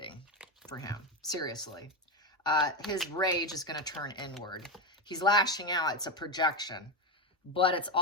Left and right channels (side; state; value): both; normal; correlation 0.12